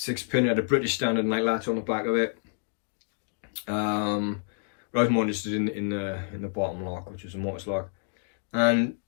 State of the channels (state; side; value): silent; right; 59 dB below the other